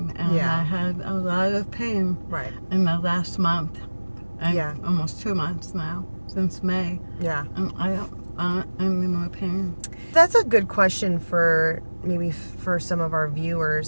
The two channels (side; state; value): both; inverted; correlation -1.00